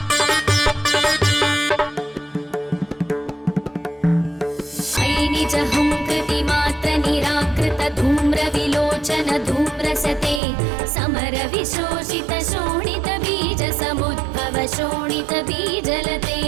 धूम्रविलोचन धूम्रसते समर विशोषित शोणित बीज समुद्भव शोणित बीजलते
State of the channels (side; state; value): left; drops out; at 10.4 s